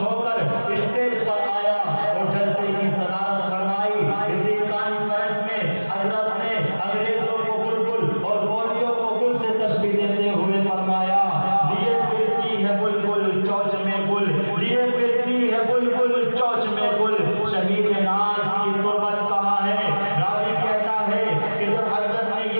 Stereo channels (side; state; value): both; inverted; correlation -1.00